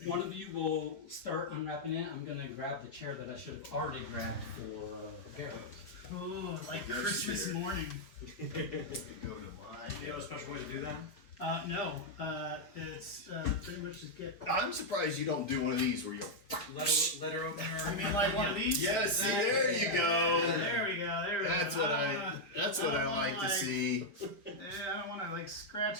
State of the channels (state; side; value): late; right; 4.8 ms